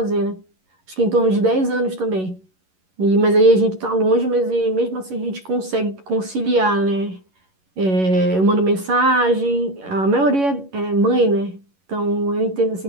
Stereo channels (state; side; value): late; left; 11 ms